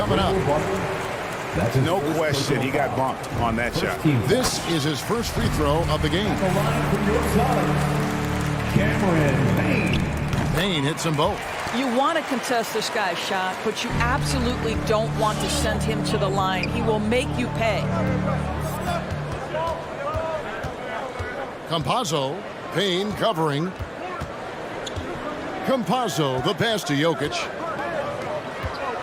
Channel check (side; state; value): both; identical; correlation 1.00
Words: up. No question, he got bumped on that shot. This is his first free throw of the game. Cameron Payne. Payne hits them both. You want to contest this guy's shot, but you absolutely don't want to send him to the line. He will make you pay. Campazzo. Payne covering. Campazzo, the pass to Jokic.